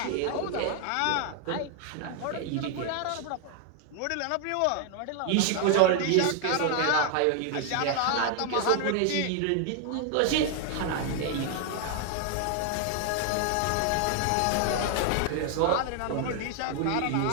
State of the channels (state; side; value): different; both; correlation 0.00